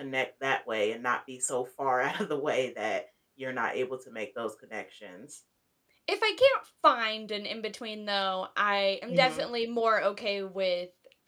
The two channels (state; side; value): identical; both; correlation 1.00